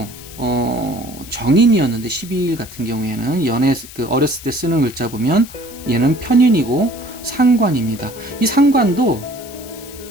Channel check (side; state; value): left; noise; hiss, 17 dB below the sound